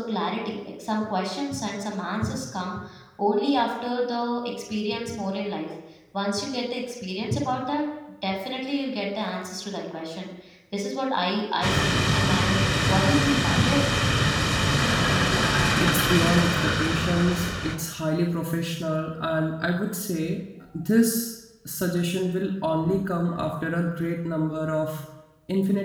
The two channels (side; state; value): both; identical; correlation 1.00